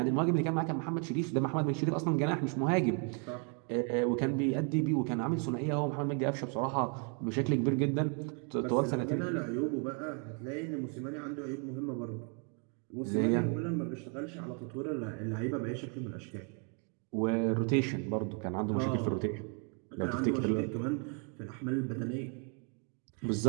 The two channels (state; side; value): quieter; left; 38.8 dB